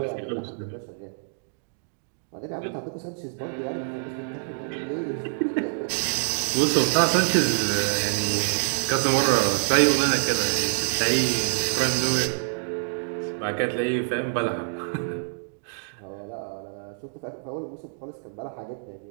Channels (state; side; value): silent; left; digital silence